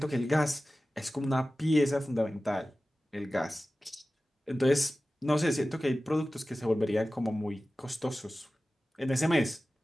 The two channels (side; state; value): both; normal; correlation 0.96